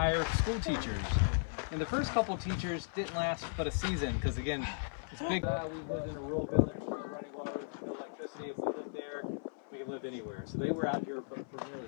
school teachers. And the first couple teachers didn't last but a season because, again, it's big. We live in a rural village with running water, no electricity. If we lived there, we could live anywhere. So they were out here for nearly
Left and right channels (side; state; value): right; silent; 54 dB below the other